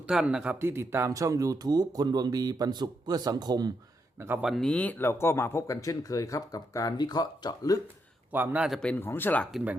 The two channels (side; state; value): both; normal; correlation 0.80